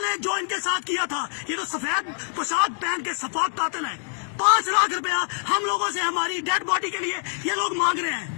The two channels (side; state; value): right; silent; digital silence